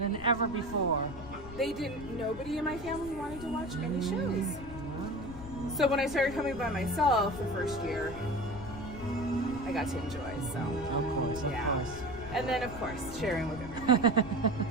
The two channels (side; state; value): left; noise; rumble, 13 dB below the sound